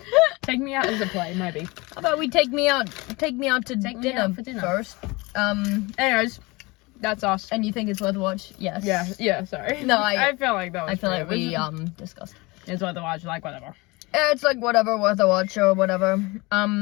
Take Me Out as a play, maybe. How about we take me out to dinner first? Anyways, that's us. And you think it's worth a watch? Yes. Yeah, sorry. No, I feel like that was I feel like we discussed. It's worth a watch, like whatever. It's like whatever, worth a watch or whatever.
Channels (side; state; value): right; quieter; 24.4 dB